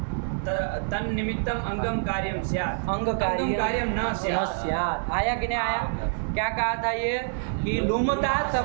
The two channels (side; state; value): left; silent; digital silence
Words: तन्निमित्तम अंगम कार्यम स्यात्। अंग अंगम कार्यम न स्यात्। स्यात्। आया कि नहीं आया? क्या कहा था ये कि लुमता